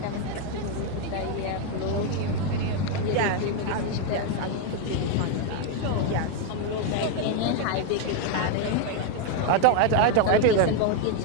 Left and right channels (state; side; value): different; both; correlation 0.01